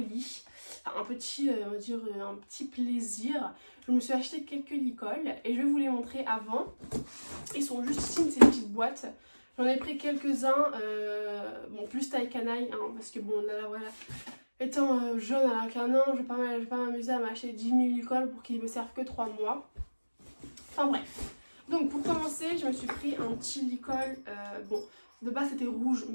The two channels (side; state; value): both; inverted; correlation -1.00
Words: enfin, un petit plaisir. Je me suis acheté quelques licoles et je vais vous les montrer avant. Ils sont juste ici, ces petites boîtes. J'en ai pris quelques-uns, bon, plus taille canaille, hein, parce que bon, là, voilà, étant jeune à qu'un an, je vais pas m'amuser à m'acheter 10 000 licoles pour qu'ils me servent que 3 mois. Enfin bref. Donc pour commencer, je me suis pris un petit licol, bon, de base c'était rouge,